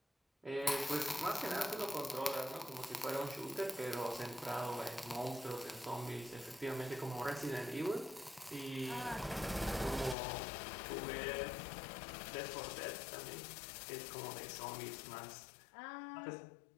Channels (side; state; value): right; drops out; at 10.2 s